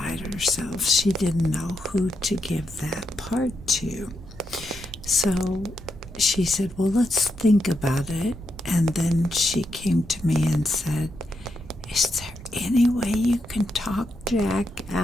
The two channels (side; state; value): both; normal; correlation 0.83